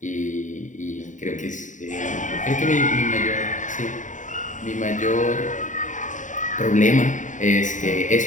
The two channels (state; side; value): late; right; 0.36 ms